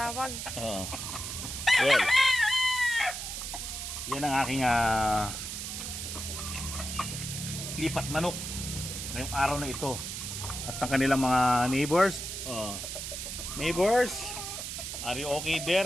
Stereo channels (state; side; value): noise; right; hiss, 6 dB below the sound